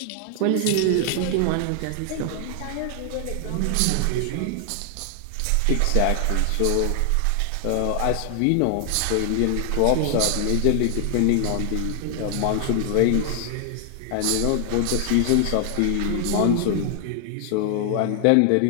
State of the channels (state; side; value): different; both; correlation 0.00